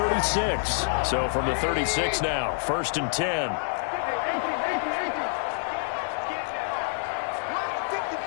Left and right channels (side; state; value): right; silent; 60 dB below the other